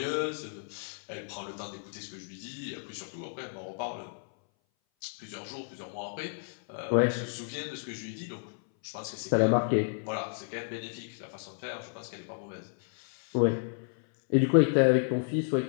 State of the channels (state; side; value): silent; right; 57 dB below the other